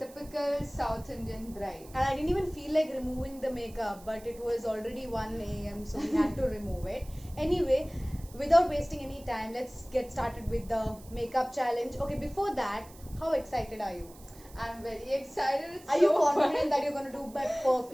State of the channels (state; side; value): noise; right; hiss, 22 dB below the sound